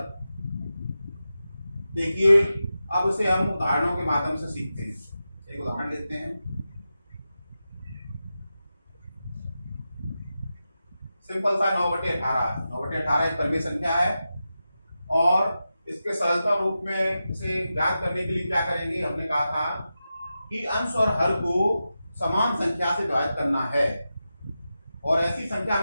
देखिए अब इसे हम उदाहरणों के माध्यम से सीखते हैं। एक उदाहरण लेते हैं। सिंपल सा 9/18। 9/18 एक परिमेय संख्या है और इसके सरलता रूप में इसे ज्ञात करने के लिए क्या करेंगे, हमने कहा था कि अंश और हर को समान संख्या से विभाजित करना है और ऐसी संख्या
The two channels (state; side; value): inverted; both; correlation -0.91